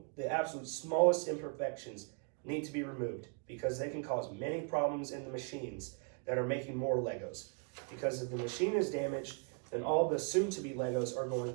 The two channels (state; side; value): quieter; left; 37.9 dB